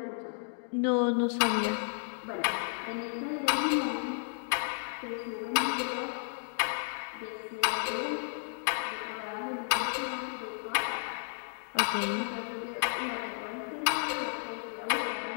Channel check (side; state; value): right; silent; digital silence